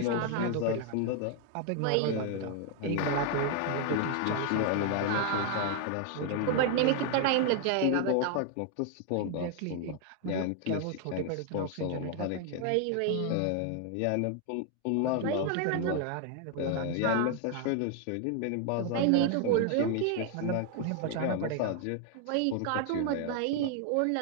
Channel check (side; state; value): both; different; correlation 0.00